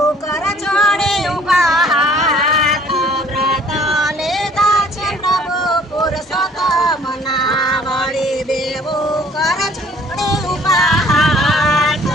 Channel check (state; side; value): normal; both; correlation 0.56